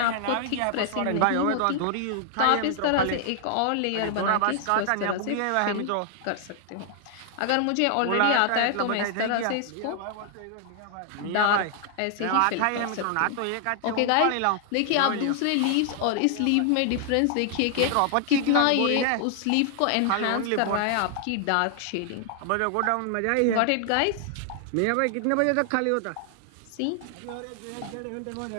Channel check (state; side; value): different; both; correlation 0.00